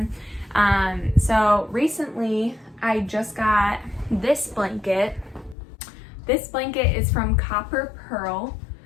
So recently I just got this blanket. This blanket is from Copper Pearl.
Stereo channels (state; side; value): drops out; right; at 5.6 s